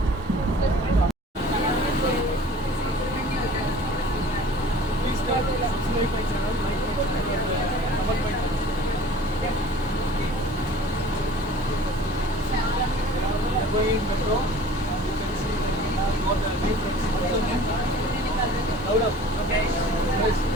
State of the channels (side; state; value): both; normal; correlation 0.46